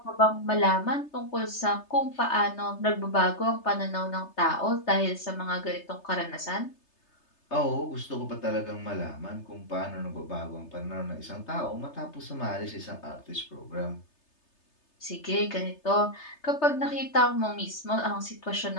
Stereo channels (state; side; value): late; right; 3.3 ms